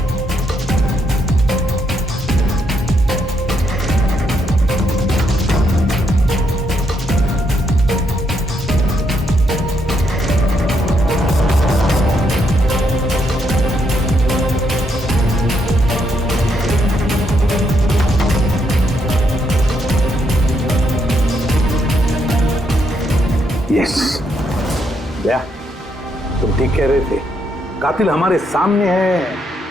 यस भैया, तुम ठीक कह रहे थे, कातिल हमारे सामने है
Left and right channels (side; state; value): both; normal; correlation 0.76